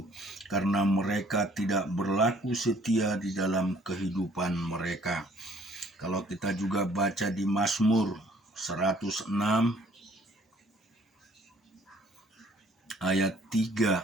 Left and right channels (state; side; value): normal; both; correlation 0.59